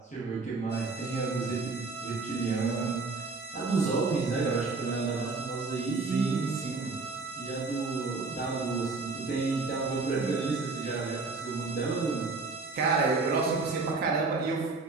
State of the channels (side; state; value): left; quieter; 3.9 dB